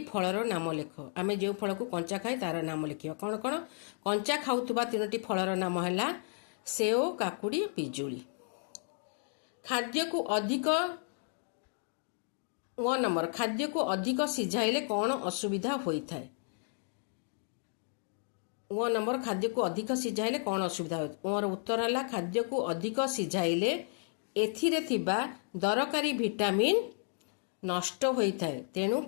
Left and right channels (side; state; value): right; silent; 56 dB below the other